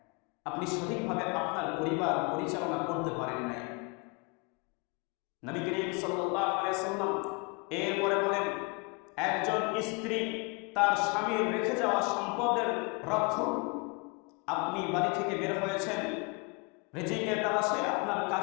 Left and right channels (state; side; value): quieter; right; 30.2 dB